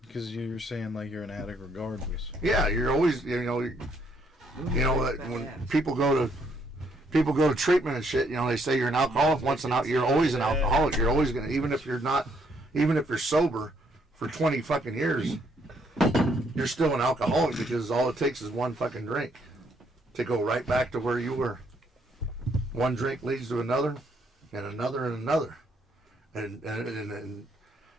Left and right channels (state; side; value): normal; both; correlation 0.71